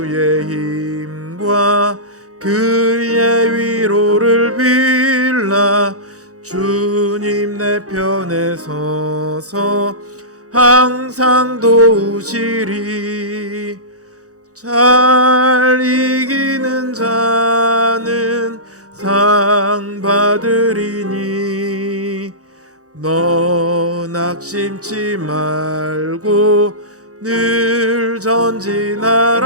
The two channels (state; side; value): late; left; 0.66 ms